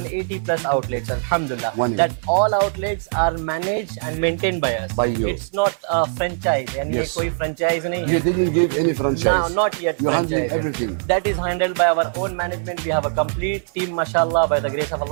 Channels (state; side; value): silent; left; 55 dB below the other